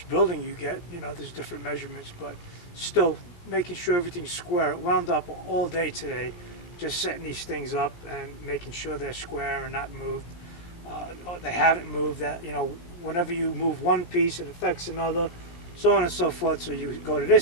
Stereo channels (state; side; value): late; right; 17 ms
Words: building you get, you know, there's different measurements, but still making sure everything's square. It wound up all day today just setting these things up and making sure they're square and not moved. Or they haven't moved. That, you know, whenever you move one piece, it affects another, so on and so forth. So you go to